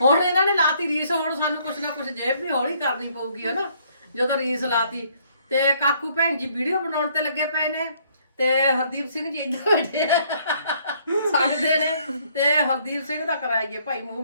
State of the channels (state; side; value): inverted; both; correlation -0.65